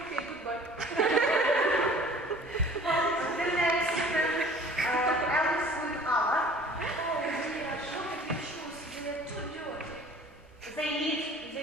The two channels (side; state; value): both; normal; correlation 0.48